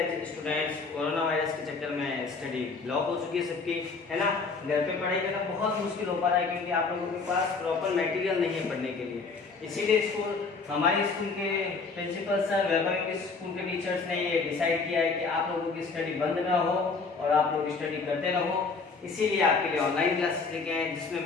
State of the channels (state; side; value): quieter; right; 4.5 dB